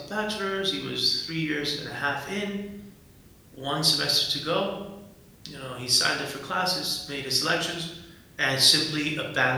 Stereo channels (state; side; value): identical; both; correlation 1.00